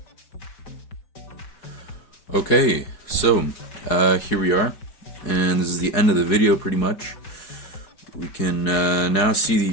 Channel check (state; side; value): late; right; 4.7 ms